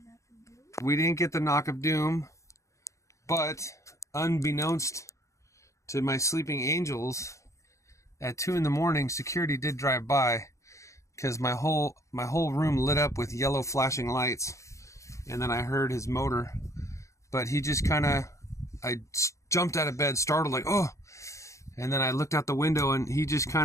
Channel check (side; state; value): right; late; 0.15 ms